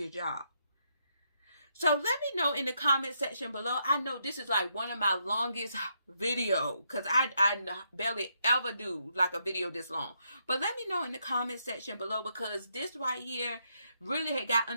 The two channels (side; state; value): both; inverted; correlation -0.78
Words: job. So let me know in the comment section below. I know this is like one of my longest videos because I barely ever do like a video this long. But let me know in the comment section below, because this right here really had got